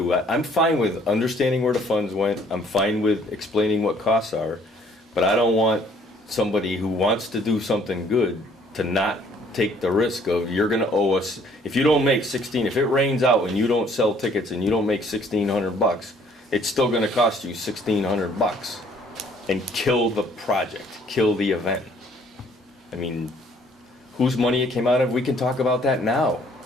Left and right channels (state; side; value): normal; both; correlation 0.60